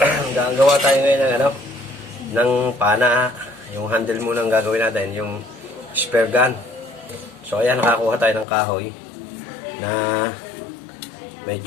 gagawa tayo ngayon ng ng pana. Yung handle muna ang gagawin natin, yung spare gun. So ayan, nakakuha tayo ng kahoy na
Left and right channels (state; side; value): drops out; right; at 8.5 s